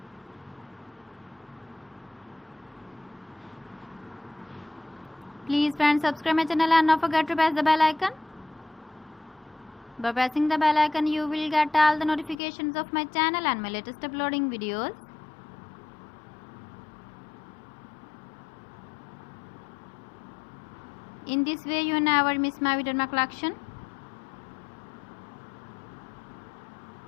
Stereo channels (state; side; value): drops out; right; at 12.4 s